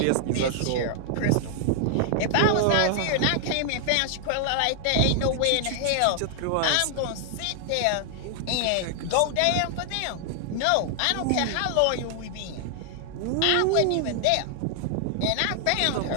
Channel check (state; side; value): different; both; correlation 0.00